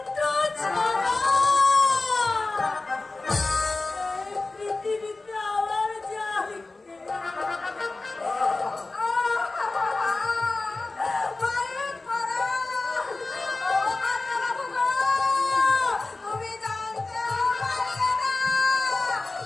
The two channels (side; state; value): right; quieter; 3.4 dB